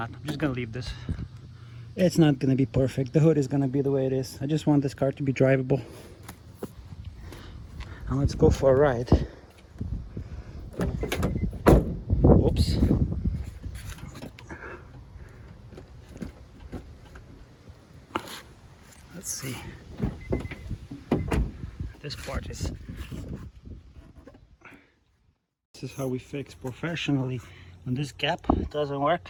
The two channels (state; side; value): identical; both; correlation 1.00